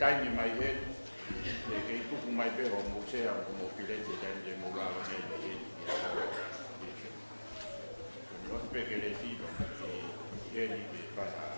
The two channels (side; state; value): both; inverted; correlation -1.00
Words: mai he ke tuku mai pe ho mo se ko mo pilete te mo la ne no pe ke le ti ke ni ke pa